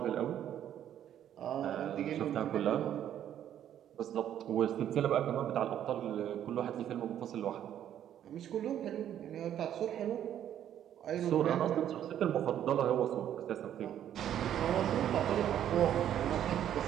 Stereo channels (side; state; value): left; quieter; 10.6 dB